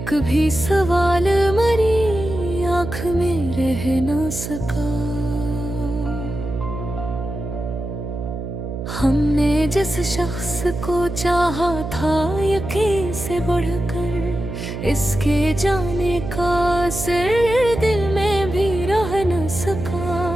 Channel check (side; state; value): right; noise; hum, 7 dB below the sound